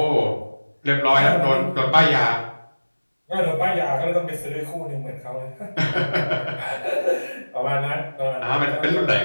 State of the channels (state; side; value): inverted; both; correlation -1.00